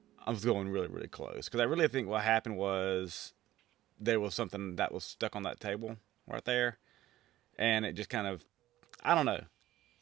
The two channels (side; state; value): left; quieter; 14.7 dB